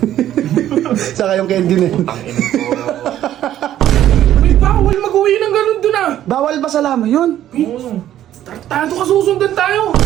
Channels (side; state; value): left; quieter; 12.0 dB